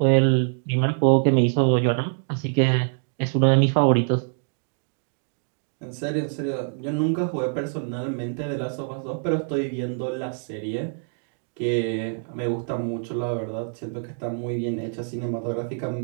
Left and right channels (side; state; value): left; silent; digital silence